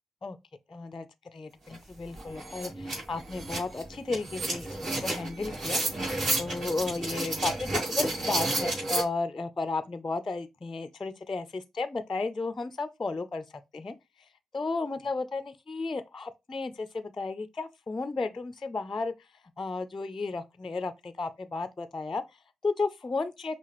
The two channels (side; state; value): both; normal; correlation 0.84